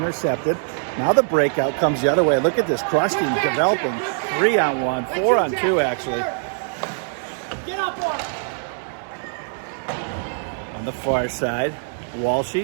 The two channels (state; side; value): silent; left; digital silence